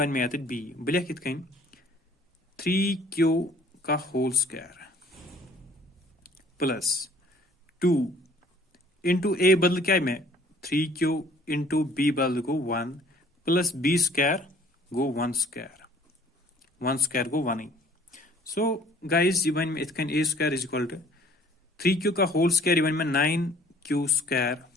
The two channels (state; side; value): normal; both; correlation 0.54